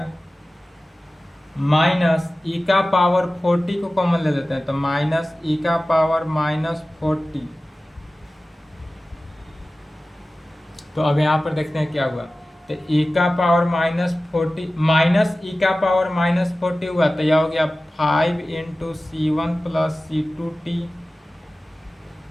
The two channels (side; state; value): both; normal; correlation 0.96